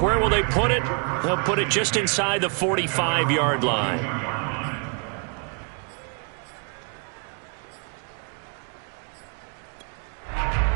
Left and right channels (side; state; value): left; quieter; 38.8 dB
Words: will they put it? They'll put it just inside the 45-yard line.